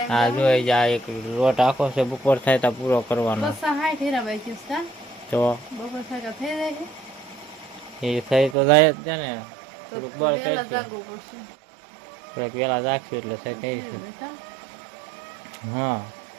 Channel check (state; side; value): drops out; left; at 8.6 s